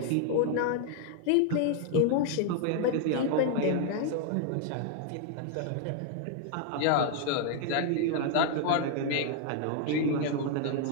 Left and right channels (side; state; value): both; different; correlation 0.00